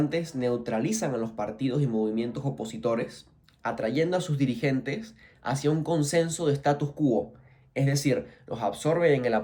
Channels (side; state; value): both; identical; correlation 1.00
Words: neutralizan a los partidos y movimientos opositores, atrayendo a sus dirigentes hacia un consenso de status quo, es decir, los absorben en el